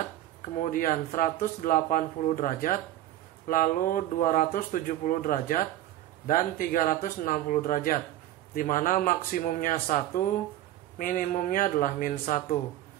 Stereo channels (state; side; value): quieter; left; 13.6 dB